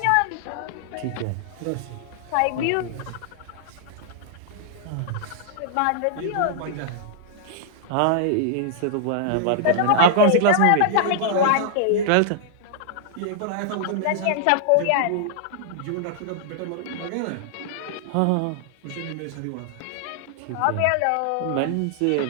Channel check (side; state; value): both; different; correlation -0.01